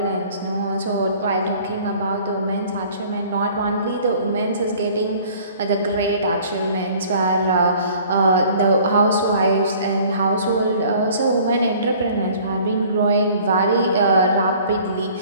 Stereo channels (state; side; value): inverted; both; correlation -0.52